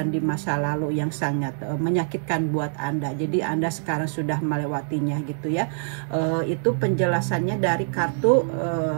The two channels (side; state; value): left; silent; digital silence